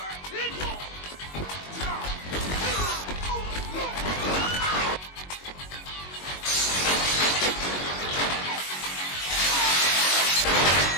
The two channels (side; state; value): right; late; 22 ms